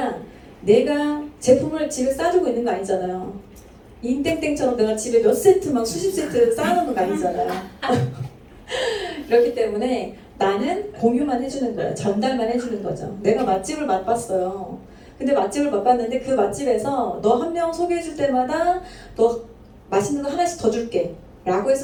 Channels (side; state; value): both; identical; correlation 1.00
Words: 내가 제품을 집에 싸두고 있는 거 아니잖아요. 인땡땡처럼 내가 집에 몇 세트 막 수십 세트 쌓아놓는 거 아니잖아요. 그렇기 때문에 나는 공유만 해주는 거야. 전달만 해주는 거죠. 내가 맛집을 맛봤어요. 근데 맛집을 맛봤는데 그 맛집에서 너 한 명 소개해줄 때마다 너 맛있는 거 하나씩 더 줄게 라고